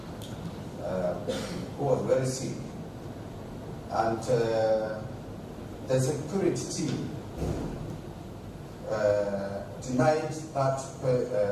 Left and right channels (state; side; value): identical; both; correlation 1.00